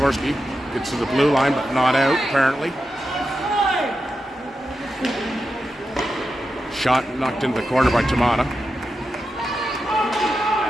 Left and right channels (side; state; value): both; normal; correlation 0.89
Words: Gets to the blue line, but not out, apparently. Shot knocked into the corner by Tamata.